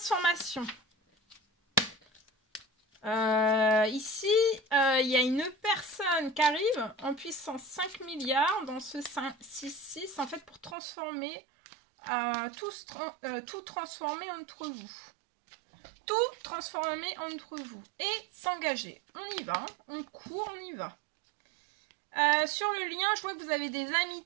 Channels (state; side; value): drops out; left; at 10.8 s